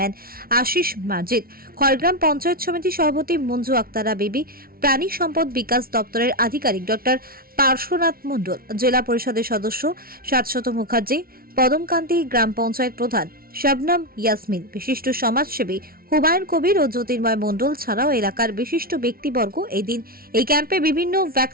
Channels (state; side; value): late; left; 0.43 ms